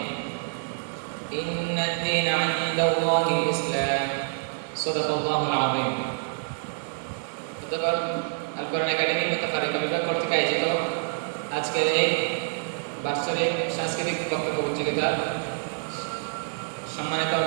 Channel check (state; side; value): silent; left; 58 dB below the other